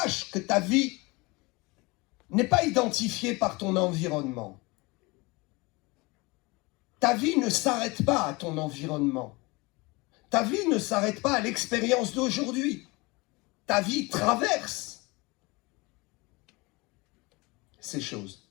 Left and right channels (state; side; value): quieter; right; 24.9 dB